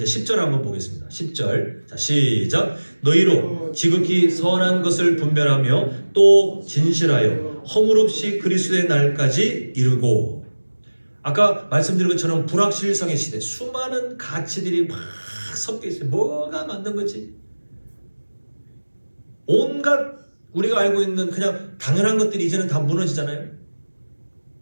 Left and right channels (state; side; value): inverted; both; correlation -1.00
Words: 10절 한번 보겠습니다. 10절. 자, 시작. 너희로 지극히 선한 것을 분별하며 또 진실하여 허물 없이 그리스도의 날까지 이루고. 아까 말씀드린 것처럼 불확실성의 시대, 수많은 가치들이 막 섞여 있어요. 뭐가 맞는 거지? 온갖 우리가 알고 있는 그냥 당연한 것들이 이제는 다 무너지잖아요.